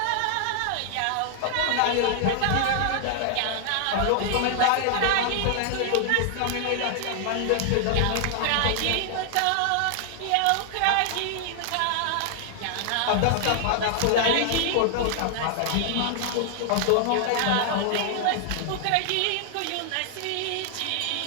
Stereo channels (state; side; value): different; both; correlation 0.00